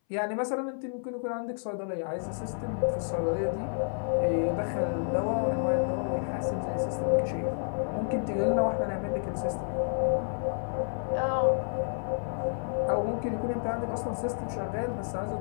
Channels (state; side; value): silent; right; 58 dB below the other